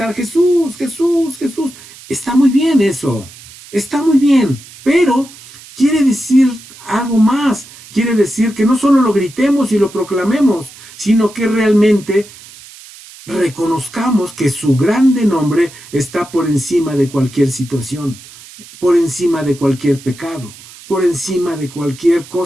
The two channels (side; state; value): right; noise; hiss, 20 dB below the sound